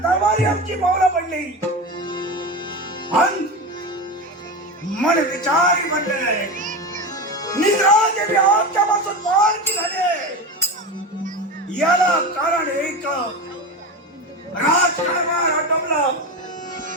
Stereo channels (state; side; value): normal; both; correlation 0.22